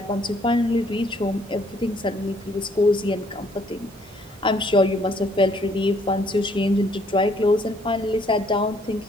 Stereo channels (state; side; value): normal; both; correlation 0.65